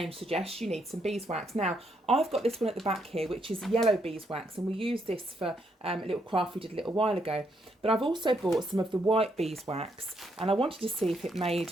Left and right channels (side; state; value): both; normal; correlation 0.75